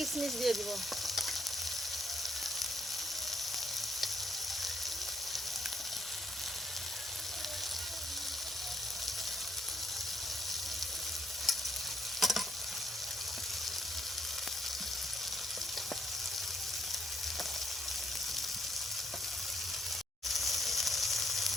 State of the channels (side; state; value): both; normal; correlation 0.73